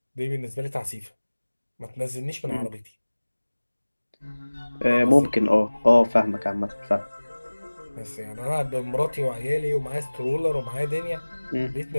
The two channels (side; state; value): both; inverted; correlation -1.00